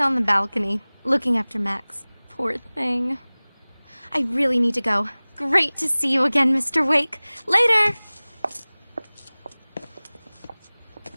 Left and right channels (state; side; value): inverted; both; correlation -1.00